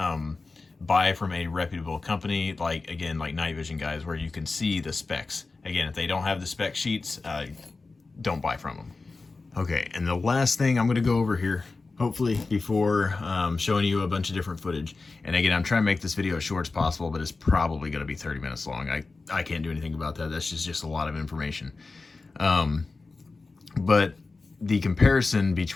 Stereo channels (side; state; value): right; quieter; 3.8 dB